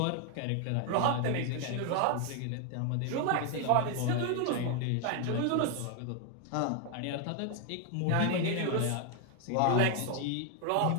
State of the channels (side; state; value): both; different; correlation 0.00